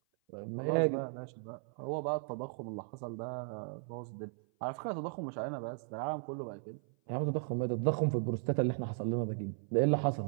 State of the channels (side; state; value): left; silent; 54 dB below the other